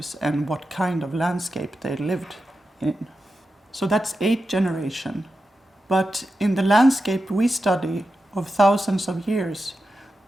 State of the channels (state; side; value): normal; both; correlation 0.90